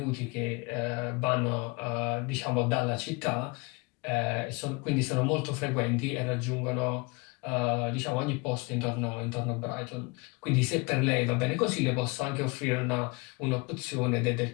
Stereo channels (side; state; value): right; quieter; 27.5 dB